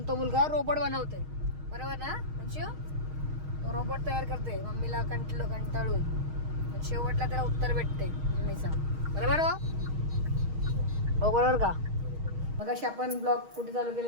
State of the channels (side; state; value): left; late; 6.4 ms